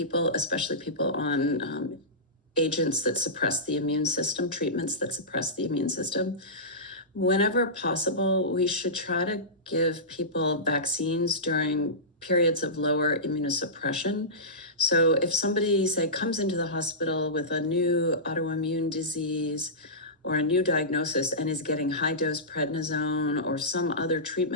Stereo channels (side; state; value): both; normal; correlation -0.18